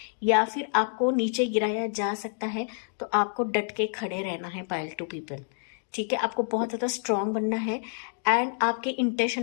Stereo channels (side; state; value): right; silent; digital silence